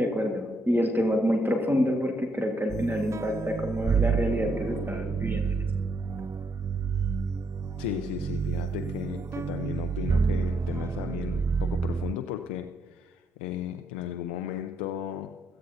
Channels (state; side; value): normal; both; correlation 0.75